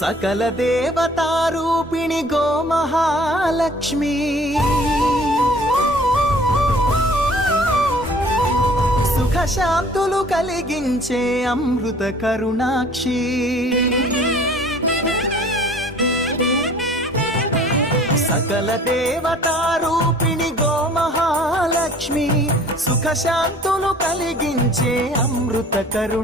देवतारूपिणि गोमहालक्ष्मी सुख शांतुलु कलिगिंचे अमृत करुणाक्षी सकल देवतारूपिणि गोमहालक्ष्मी सुख शांतुलु कलिगिंचे अमृत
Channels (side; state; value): both; normal; correlation 0.52